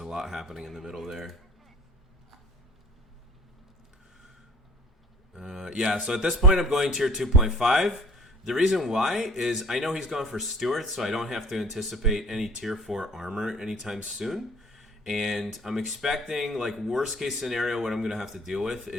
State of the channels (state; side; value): normal; both; correlation 0.50